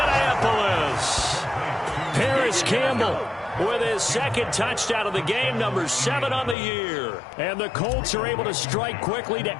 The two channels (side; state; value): right; drops out; at 6.6 s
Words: Paris Campbell with his second touchdown of the game, number 7 on the year. And the Colts are able to strike quickly to